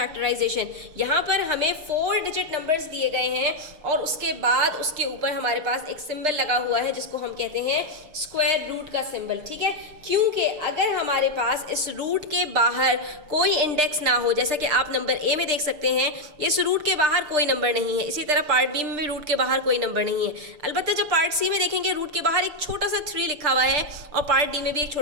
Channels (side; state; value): left; late; 6.7 ms